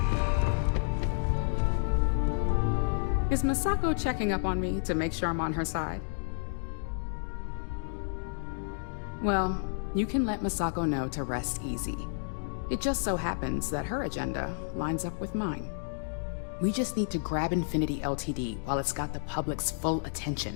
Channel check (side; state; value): right; silent; digital silence